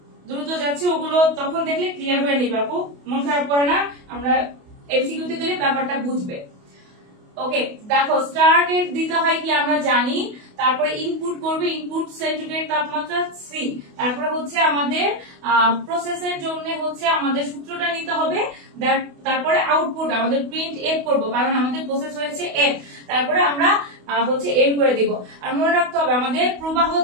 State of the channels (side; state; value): left; late; 28 ms